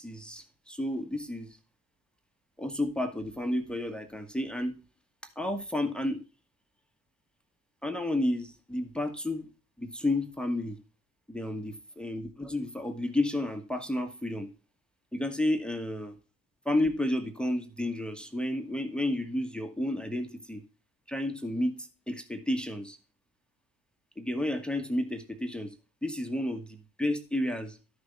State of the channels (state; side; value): normal; both; correlation 0.84